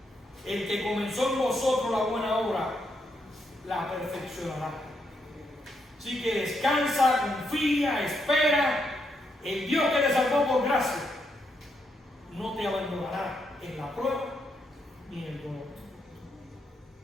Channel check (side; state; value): both; normal; correlation 0.79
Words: El que comenzó en vosotros la buena obra, la perfeccionará. Así que descansa, confía, espera. El Dios que te salvó por gracia no te abandonará en la prueba ni en el dolor.